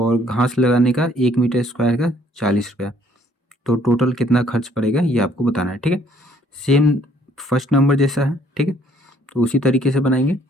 घास लगाने का 1 मीटर स्क्वायर का 40 रुपया। तो टोटल कितना खर्च पड़ेगा ये आपको बताना है। ठीक है, सेम फर्स्ट नंबर जैसा है। ठीक है, तो उसी तरीके से बनाएंगे।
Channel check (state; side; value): normal; both; correlation 0.62